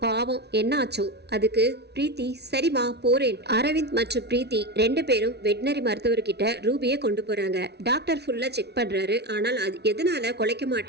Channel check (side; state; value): left; late; 0.49 ms